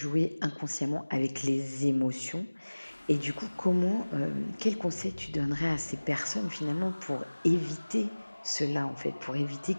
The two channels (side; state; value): both; inverted; correlation -1.00